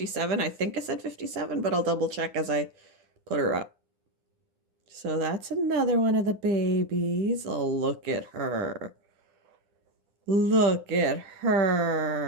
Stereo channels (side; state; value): left; late; 10 ms